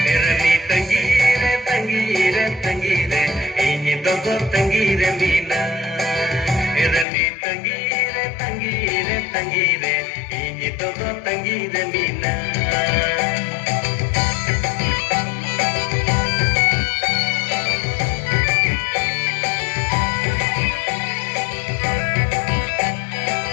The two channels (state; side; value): drops out; right; at 7.1 s